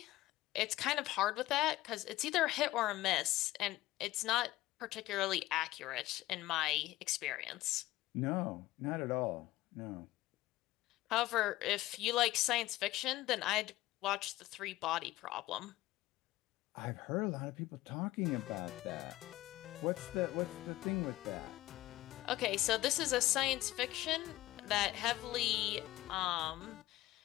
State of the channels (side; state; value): right; quieter; 16.7 dB